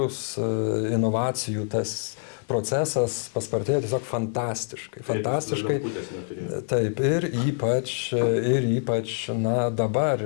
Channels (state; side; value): silent; right; 61 dB below the other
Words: inovacijų tas procesas paspartėjo tiesiog fantastiškai. Taip, ir ypač dabar,